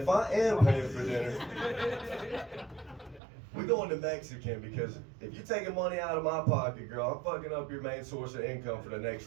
I am paying for dinner, we're going to Mexican, because if you're taking money out of my pocket, girl, I'm fucking up your main source of income for the next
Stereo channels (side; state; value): left; drops out; at 3.2 s